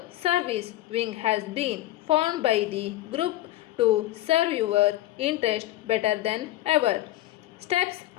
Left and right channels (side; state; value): right; quieter; 15.4 dB